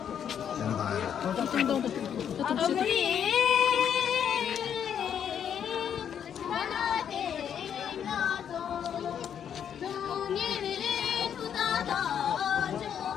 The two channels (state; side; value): quieter; right; 8.6 dB